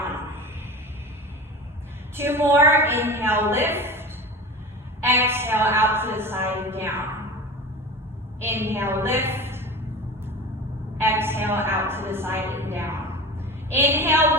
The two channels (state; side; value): normal; both; correlation 0.32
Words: 2 more. Inhale, lift. Exhale, out to the side and down. Inhale, lift. Exhale, out to the side and down. Inhale,